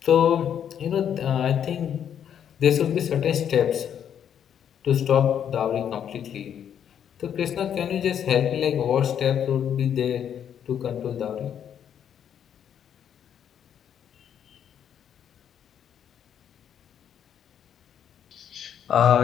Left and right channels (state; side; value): quieter; right; 9.0 dB